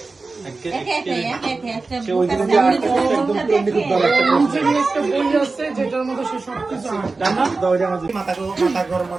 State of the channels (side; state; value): left; quieter; 3.8 dB